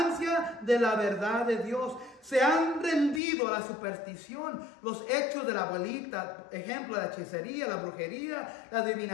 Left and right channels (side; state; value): right; drops out; at 3.2 s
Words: de la verdad de Dios. Se han rendido a la superstición, los hechos de la abuelita, ejemplo, la hechicería, la brujería, la